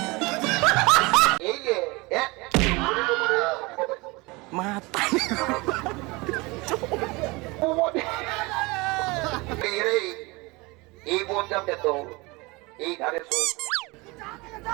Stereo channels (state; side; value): quieter; left; 24.6 dB